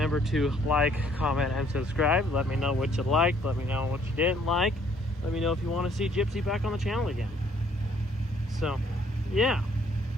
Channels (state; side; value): normal; both; correlation 0.63